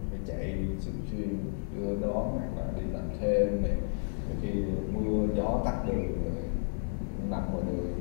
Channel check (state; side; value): silent; right; digital silence